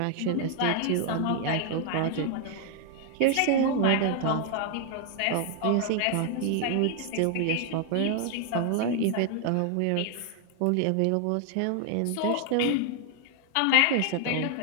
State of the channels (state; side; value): different; both; correlation 0.00